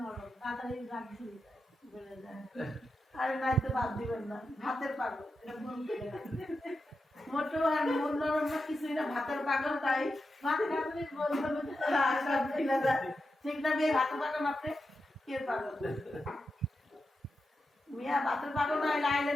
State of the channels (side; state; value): both; normal; correlation 0.89